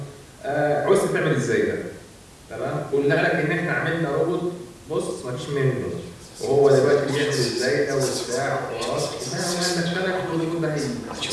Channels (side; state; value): both; identical; correlation 1.00